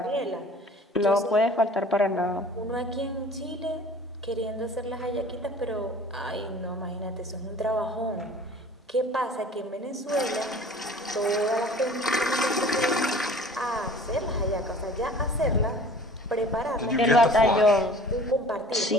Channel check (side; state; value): both; normal; correlation 0.47